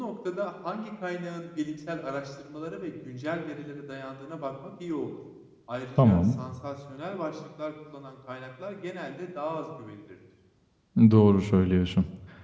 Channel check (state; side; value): identical; both; correlation 1.00